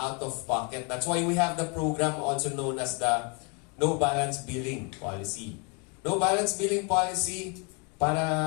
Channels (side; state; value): right; quieter; 32.7 dB